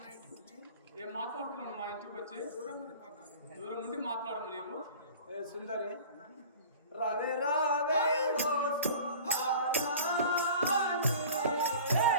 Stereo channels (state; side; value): inverted; both; correlation -0.41